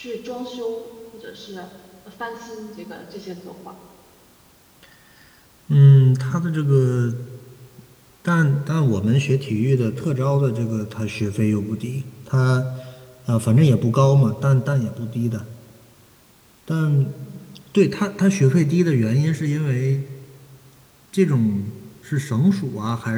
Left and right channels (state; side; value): identical; both; correlation 1.00